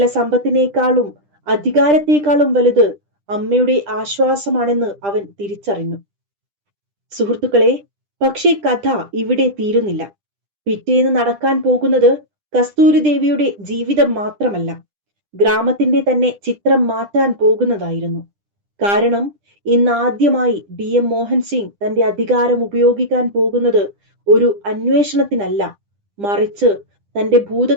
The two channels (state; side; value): late; left; 10 ms